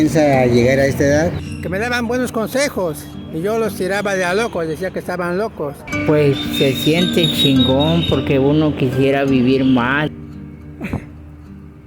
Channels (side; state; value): both; identical; correlation 1.00